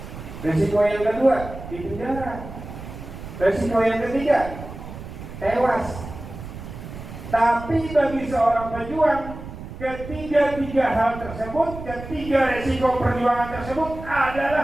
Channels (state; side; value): noise; right; rumble, 12 dB below the sound